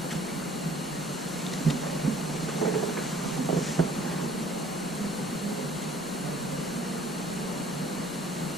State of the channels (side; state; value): both; normal; correlation 0.55